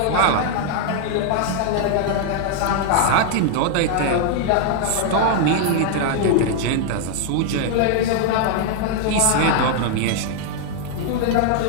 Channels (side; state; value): both; different; correlation 0.00